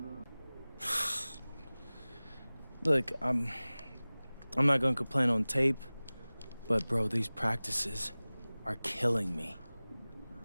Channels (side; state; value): both; inverted; correlation -0.99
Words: Look, I'm not gonna complain on tape, but bro, these practices are killing me.